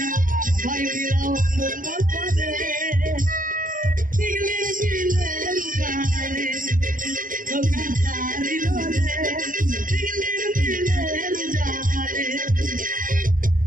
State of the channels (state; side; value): late; left; 0.40 ms